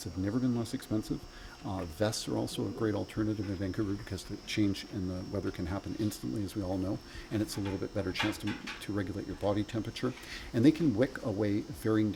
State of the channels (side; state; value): both; identical; correlation 1.00